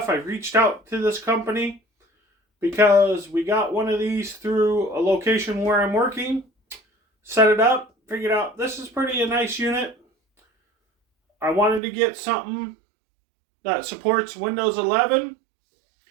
I've reached out to this company because we got one of these through a location where I'm working, set it up, figured out this is a nice unit. I wanted to get something that supports Windows 11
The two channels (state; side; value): drops out; left; at 11.8 s